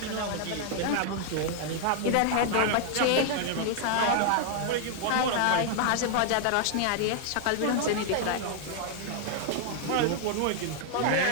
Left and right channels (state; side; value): different; both; correlation 0.00